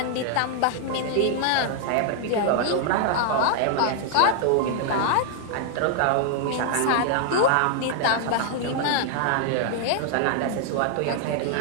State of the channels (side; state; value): both; different; correlation 0.00